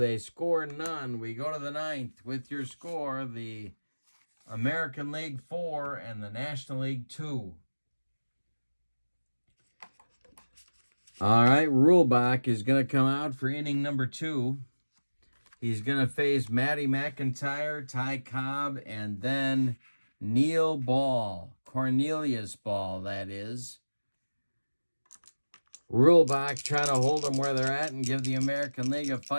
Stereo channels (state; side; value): inverted; both; correlation -1.00